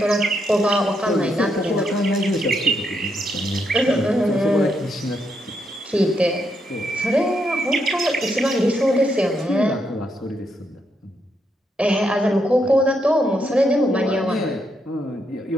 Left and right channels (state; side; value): normal; both; correlation 0.79